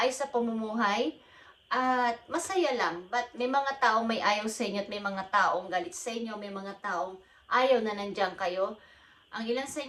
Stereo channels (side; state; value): both; identical; correlation 1.00